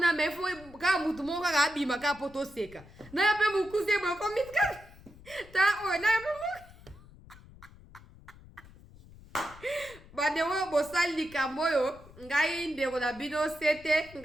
mais faut ka mutu moko kaka abima ka poto seka na ya pe mukuse bo komitka ta o na ya pe badewo bosali likambo oyo ngai ndeko na bino sete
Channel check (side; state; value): left; noise; rumble, 21 dB below the sound